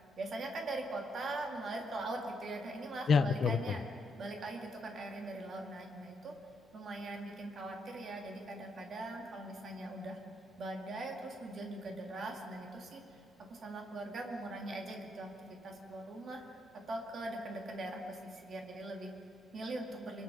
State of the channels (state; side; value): normal; both; correlation 0.78